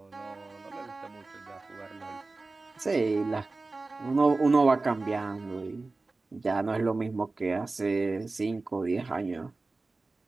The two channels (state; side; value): quieter; left; 3.5 dB